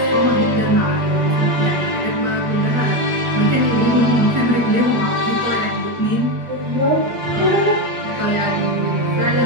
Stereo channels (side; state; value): left; late; 8.6 ms